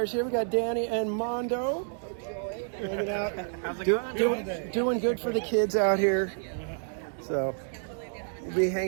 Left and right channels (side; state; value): left; silent; digital silence